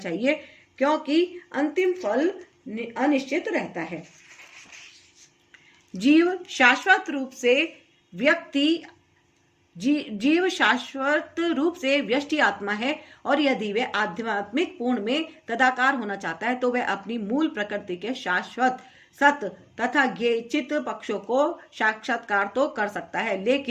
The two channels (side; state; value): both; identical; correlation 1.00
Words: क्योंकि अंतिम फल अनिश्चित रहता है। जीव शाश्वत रूप से व्यष्टि आत्मा है, और यदि वह आध्यात्मिक पूर्ण में तदाकार होना चाहता है तो वह अपनी मूल प्रकृति के शाश्वत सत्य तथा ज्ञेय चित्त पक्षों को साक्षात्कार तो कर सकता है,